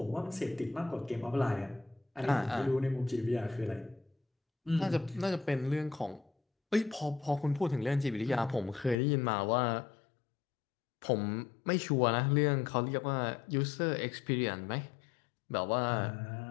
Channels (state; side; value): drops out; right; at 9.0 s